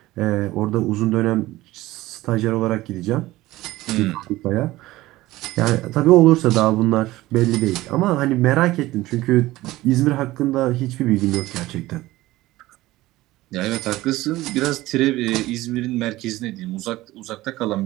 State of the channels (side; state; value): left; quieter; 17.5 dB